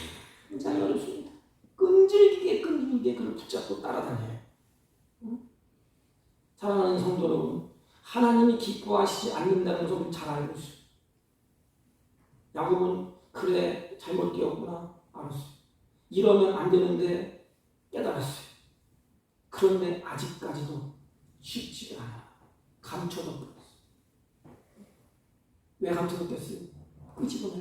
굉장히 어렵습니다. 끈질기게 그걸 붙잡고 따라다녀요. 사랑하는 성도 여러분, 하나님이 기뻐하시지 않는다는 것을 잘 알고 있어요. 야곱은 그래 잘못되었구나 알았어요. 이러면 안 되는데 깨달았어요. 그런데 아직까지도 쉽지가 않아요. 감춰뒀어요. 왜 감춰뒀겠어요?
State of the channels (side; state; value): both; identical; correlation 1.00